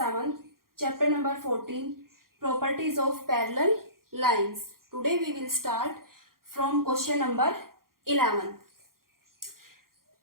chapter number 14, properties of parallel lines. Today we will start from question number 11.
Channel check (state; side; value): late; left; 0.92 ms